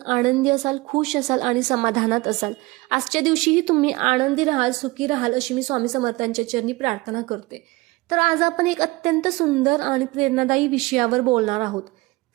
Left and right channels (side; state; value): left; quieter; 22.4 dB